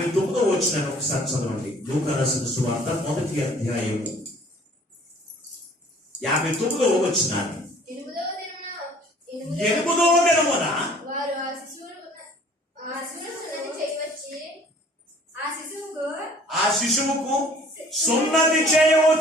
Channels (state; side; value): normal; both; correlation 0.53